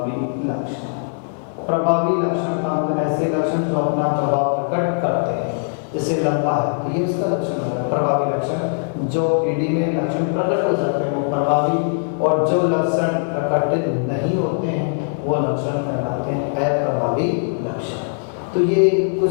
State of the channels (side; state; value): right; silent; 65 dB below the other